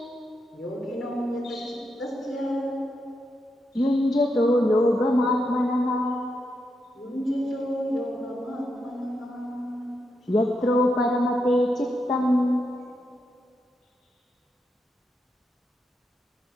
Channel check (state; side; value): normal; both; correlation 0.83